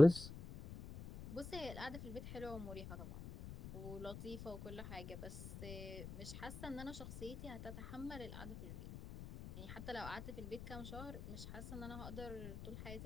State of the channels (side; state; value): left; noise; rumble, 9 dB below the sound